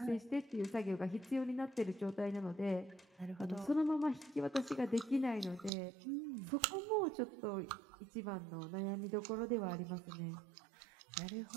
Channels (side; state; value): left; drops out; at 5.7 s